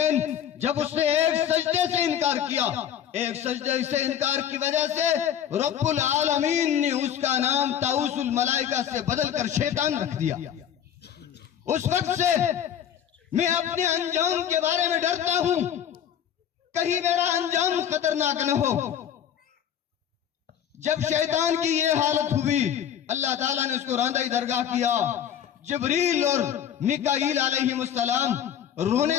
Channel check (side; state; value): right; quieter; 9.5 dB